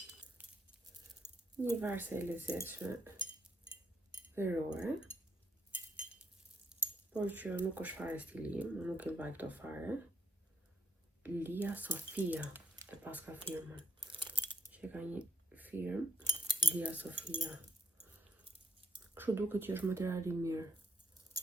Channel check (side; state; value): both; normal; correlation 0.78